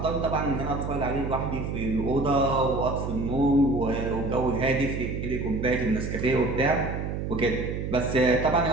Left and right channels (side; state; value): right; noise; hum, 4 dB below the sound